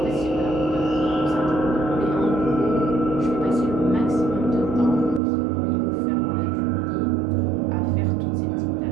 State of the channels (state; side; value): drops out; left; at 5.2 s